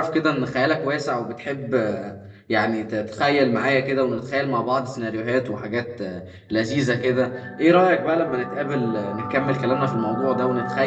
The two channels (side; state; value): both; identical; correlation 1.00